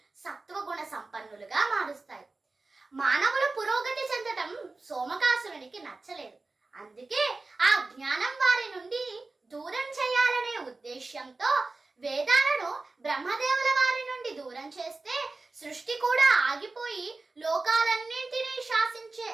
సత్వగుణ సంపన్నులుగా మారుస్తాయి. మానవులు పురోగతి చెందటం సోమకాసురునికి నచ్చలేదు. అందుకే ఆ జ్ఞానం వారి నుండి దూరం చేయాలనే ఉద్దేశ్యంతో వేదాలను బ్రహ్మదేవుల వారి నుండి దూరం చేస్తే సృష్టి కూడా ఆగిపోయి లోకాలన్నింటినీ శాసించే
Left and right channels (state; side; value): quieter; left; 3.5 dB